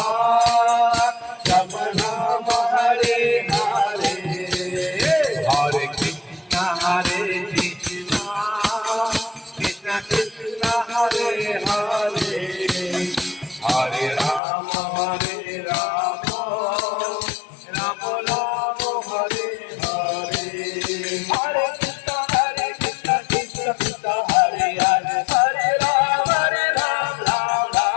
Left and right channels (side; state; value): right; drops out; at 14.4 s